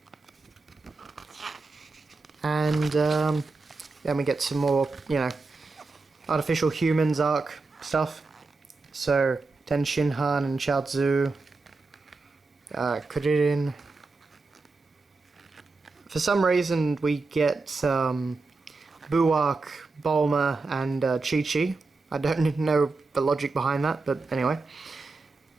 And then we get some more, artificial humans arc stuff. So Ten Shinhan and Chaozu, Kuririn. For some reason we get Buark, Bulma, and Chi-Chi. I don't know the logic behind that, but anyway.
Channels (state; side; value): quieter; left; 3.8 dB